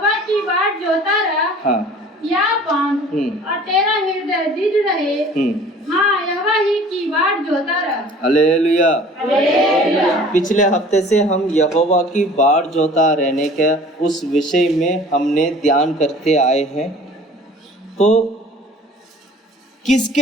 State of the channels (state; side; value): normal; both; correlation 0.48